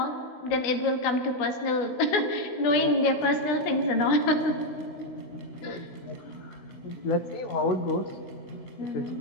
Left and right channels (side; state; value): right; late; 16 ms